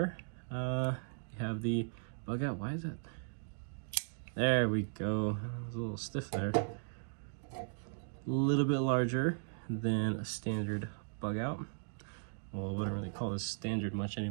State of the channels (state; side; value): silent; left; digital silence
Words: You have the bug out. Why is it? There we go. It was a little stiff there. A little bit larger than a standard bug out. Well, I wouldn't really call this standard much